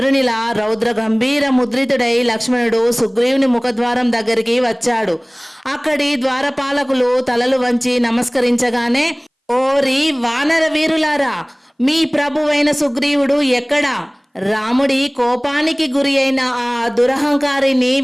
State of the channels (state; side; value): identical; both; correlation 1.00